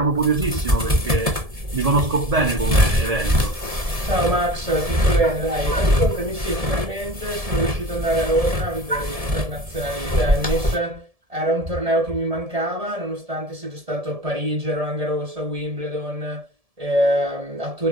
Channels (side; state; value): left; late; 1.7 ms